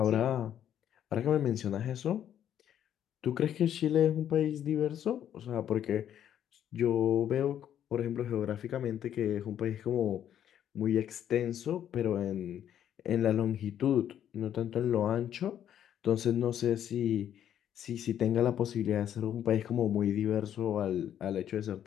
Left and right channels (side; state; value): right; quieter; 10.2 dB